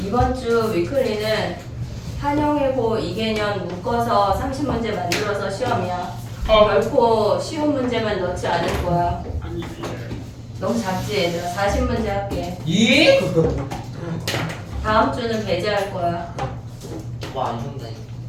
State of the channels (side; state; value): both; identical; correlation 1.00